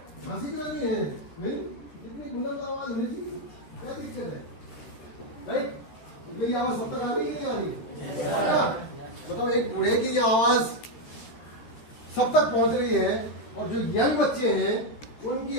हंसी क्यों नहीं है? नहीं, इतनी बुलंद आवाज होनी चाहिए, क्या दिक्कत है? राइट, मेरी आवाज सब तक आ गई कि नहीं आ रही? बताओ, एक बूढ़े की ये आवाज सब तक पहुंच रही है और जो यंग बच्चे हैं उनकी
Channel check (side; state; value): right; late; 13 ms